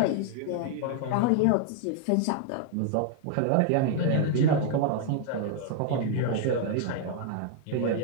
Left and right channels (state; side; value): different; both; correlation 0.00